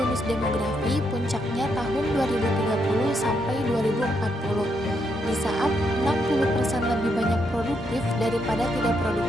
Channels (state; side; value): normal; both; correlation 0.78